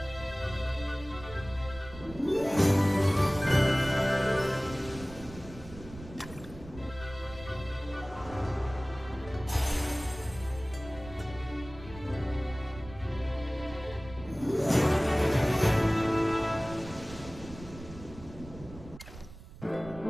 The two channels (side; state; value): right; noise; rumble, 16 dB below the sound